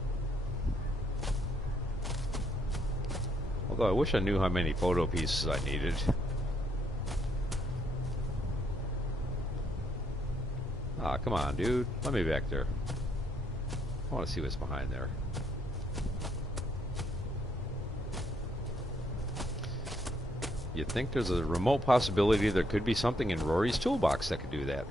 Although I wish I knew how many photo pieces I needed. Ah, come on, dude. Let me back there. I want to see what's behind there. You'd think there's a remote possibility there could be something in Rory's toolbox that could do that.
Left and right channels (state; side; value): normal; both; correlation 0.72